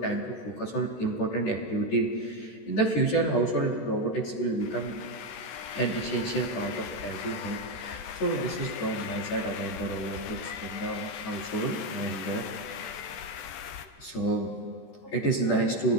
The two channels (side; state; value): right; late; 14 ms